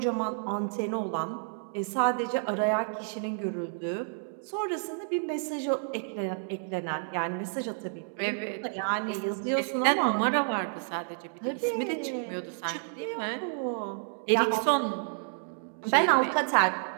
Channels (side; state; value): left; silent; digital silence